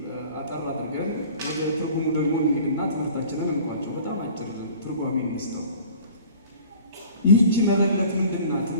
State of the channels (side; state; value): both; inverted; correlation -0.47